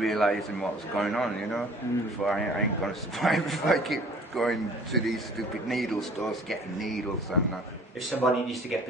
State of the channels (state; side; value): normal; both; correlation 0.50